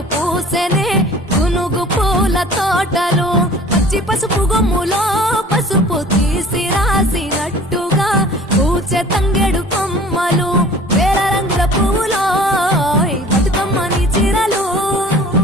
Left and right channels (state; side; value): normal; both; correlation 0.47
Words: పూసెనే గునుగు పూల తోటలు పచ్చి పసుపు గొమ్ములో పసుపు తీసి రాసినట్టుగా పూచె తంగెడు కొమ్మలు వేల రంగుల పువ్వులో బతుకమ్మని చీరలు